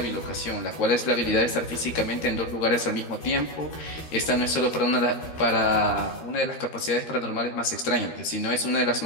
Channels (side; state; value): right; late; 13 ms